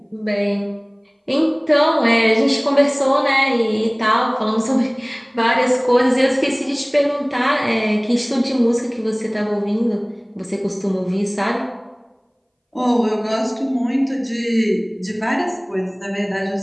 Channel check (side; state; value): both; identical; correlation 1.00